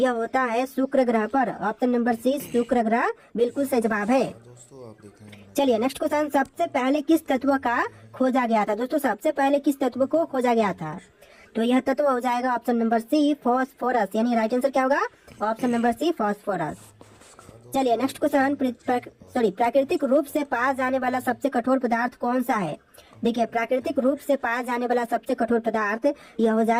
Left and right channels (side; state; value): both; identical; correlation 1.00